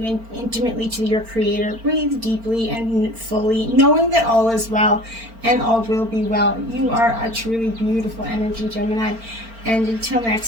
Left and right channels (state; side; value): late; left; 4.4 ms